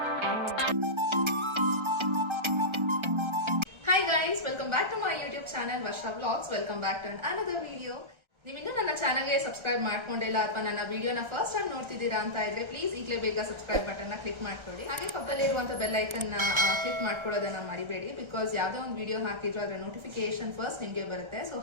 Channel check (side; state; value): left; late; 1.3 ms